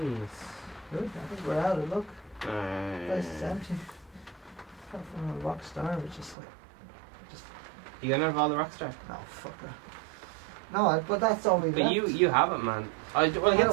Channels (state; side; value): drops out; left; at 6.4 s